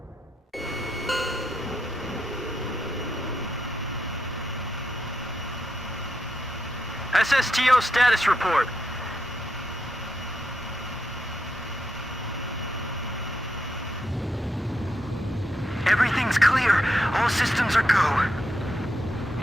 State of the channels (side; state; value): both; normal; correlation 0.82